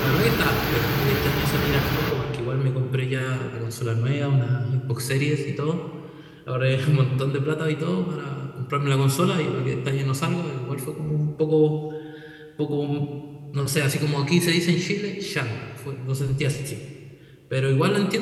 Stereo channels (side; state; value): both; identical; correlation 1.00